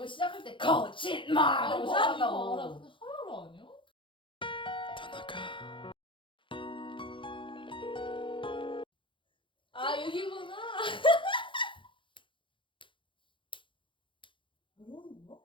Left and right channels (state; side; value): late; right; 0.24 ms